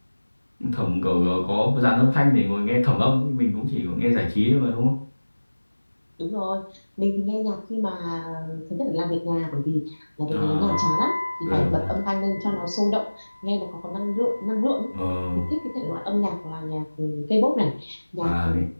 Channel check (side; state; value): both; inverted; correlation -1.00